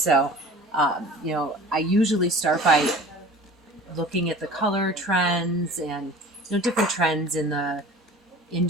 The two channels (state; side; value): normal; both; correlation 0.41